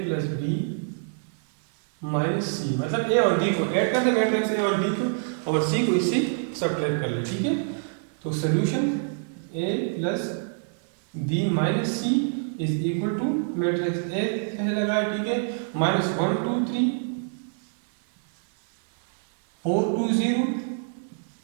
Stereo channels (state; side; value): silent; left; 60 dB below the other